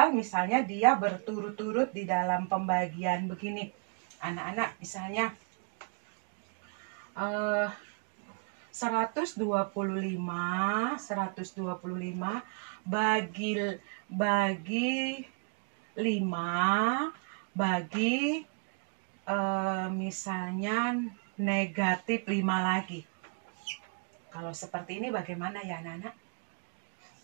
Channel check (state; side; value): quieter; left; 39.8 dB